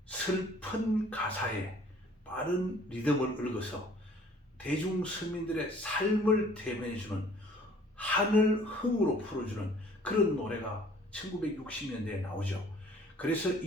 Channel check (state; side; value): normal; both; correlation 0.55